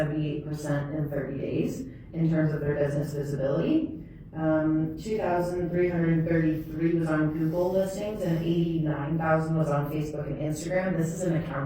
in 30 days in terms of their business visibility. 2,333 was on Google listings and 89,000 was on Facebook and Instagram. This is an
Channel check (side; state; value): both; identical; correlation 1.00